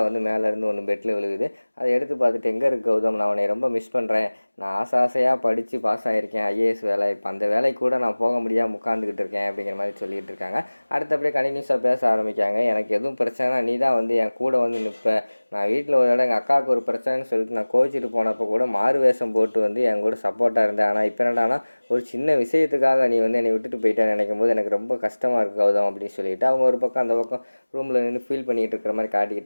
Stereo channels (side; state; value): both; inverted; correlation -1.00